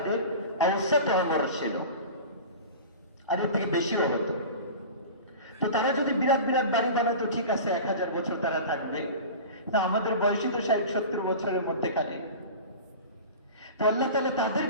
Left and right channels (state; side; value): inverted; both; correlation -0.34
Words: অবস্থা অমর ছিল, আর এর থেকে বেশিও হতো। তো তারা যদি বিরাট বিরাট বাড়ি বানাতো ঠিক আছে, 1000 বছর তারা থাকবে, না আমাদের বয়সই তো 60-70 বছরের মধ্যেখানে। তো আল্লাহ তাআলা